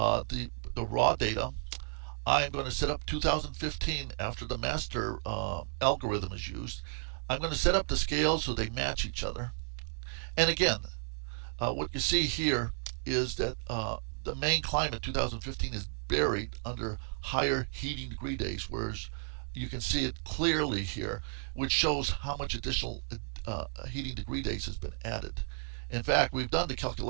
raw data. I'm going to set up 2015 after the master algorithm is used. I'm going to set up the scales so they match each other. And again, what you see here is that the Maine climate 2015 is buried under higher heating degree days, whereas you can see it clearly here, which shows how much additional heating degree days has been added. In fact, we've done the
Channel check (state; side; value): silent; left; digital silence